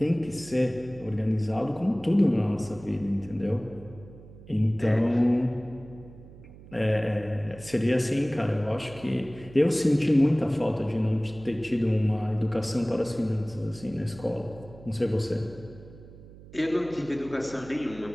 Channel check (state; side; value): noise; right; hum, 19 dB below the sound